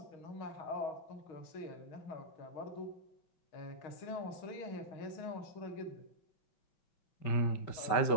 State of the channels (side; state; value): right; late; 5.3 ms